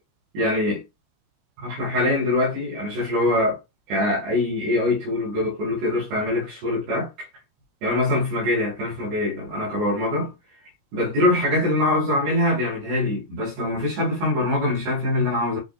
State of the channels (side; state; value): left; late; 19 ms